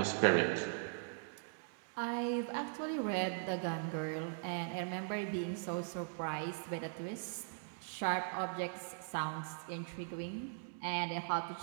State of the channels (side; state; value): left; silent; digital silence